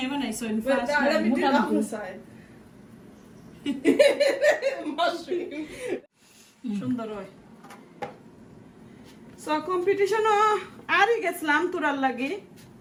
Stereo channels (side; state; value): both; identical; correlation 1.00